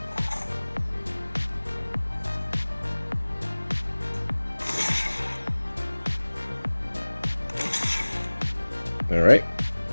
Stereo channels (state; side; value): inverted; both; correlation -1.00